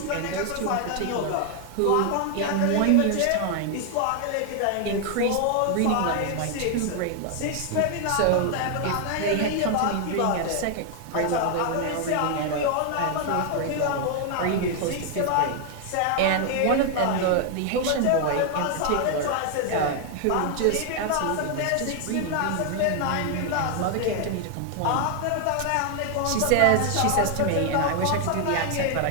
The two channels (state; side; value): different; both; correlation 0.00